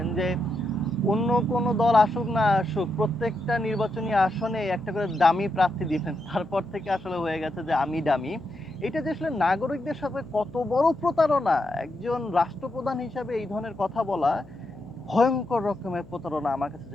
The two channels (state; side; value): noise; left; hum, 22 dB below the sound